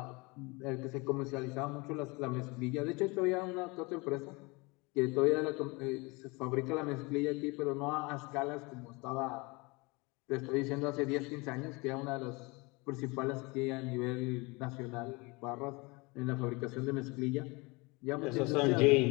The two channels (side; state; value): right; quieter; 26.3 dB